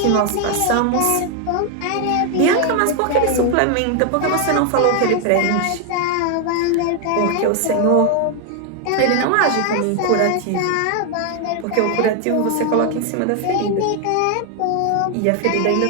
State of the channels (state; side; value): different; both; correlation 0.00